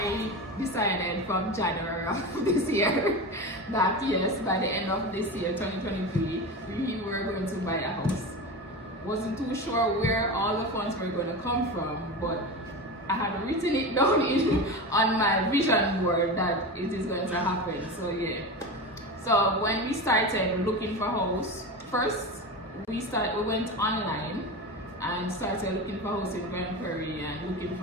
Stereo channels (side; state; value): both; normal; correlation 0.25